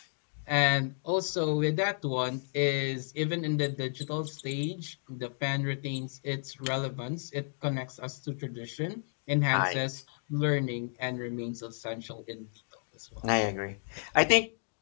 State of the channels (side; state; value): right; silent; digital silence